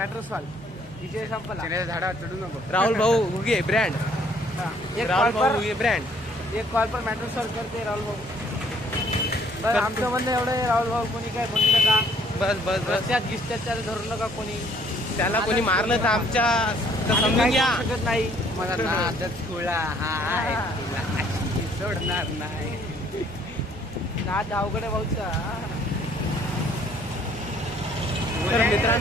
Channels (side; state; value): both; normal; correlation 0.62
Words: सॉल्व, विजय संपला. झाडा चढू नको. राहुल भाऊ हुगे ब्रँड, राहुल भाऊ हुगे ब्रँड. 1 कॉल पर मॅटर सॉल्व करते राहुल भाऊ. बस आमचं म्हणणं एवढं आहे, राहुल भाऊ कोणी काय म्हणू नका. बस रस्त्यात गिस्त्यात धरू नका कोणी. त्याला कोणी मारलं तर आमच्या तर आम्ही समजून काही घ्या. करू शकत नाही. मला नादच खुळा हाय, तुला अशी सोडणार नाही. नाद अवघड आहे भाऊचा. तर